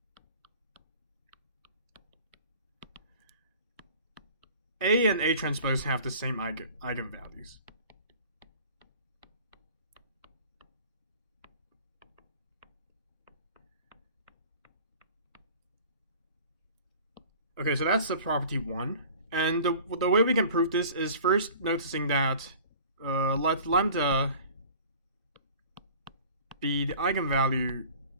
A and A transpose have the same eigenvalues. Okay, so that's the property 1. And the way we can prove this is first noticing that let lambda be the eigenvalue,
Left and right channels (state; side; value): inverted; both; correlation -0.46